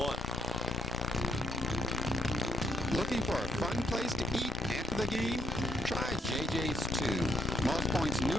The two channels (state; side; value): normal; both; correlation 0.68